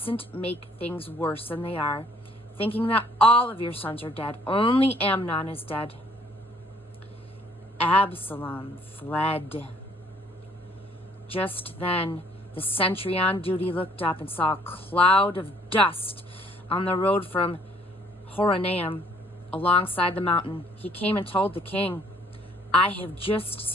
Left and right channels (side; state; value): both; normal; correlation 0.61